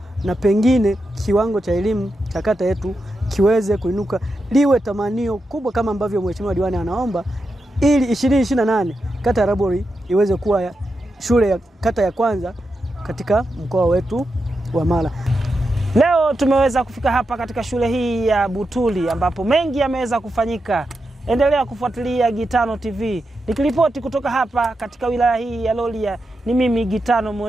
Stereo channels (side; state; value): both; normal; correlation 0.88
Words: na pengine kiwango cha elimu cha kata yetu kiweze kuinuka, liwe tamanio kubwa kama ambavyo Mheshimiwa Diwani anaomba, ili 2028 kata ya Rabwol iweze kuwa shule ya kata ya kwanza katika mkoa wetu wa Mara. Leo tumeweza kufika hapa katika shule hii ya Butuli ambapo mengi yameweza kufanyika. Endelea kufuatilia Gitano TV. Nikiripoti kutoka hapa katika wilaya hii ya Rorya, ni mimi Gitano